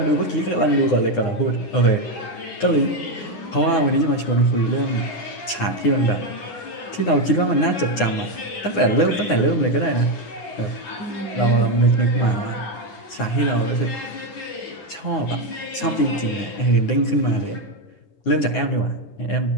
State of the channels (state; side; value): late; right; 9.7 ms